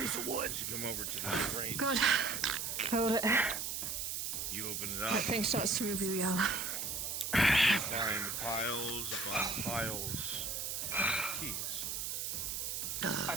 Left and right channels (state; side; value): noise; right; hiss, 2 dB below the sound